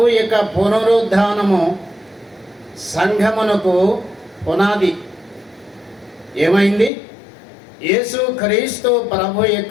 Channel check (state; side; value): drops out; right; at 6.9 s